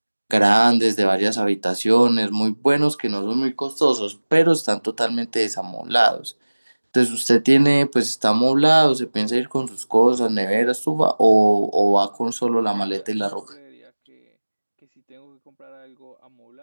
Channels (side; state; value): both; inverted; correlation -1.00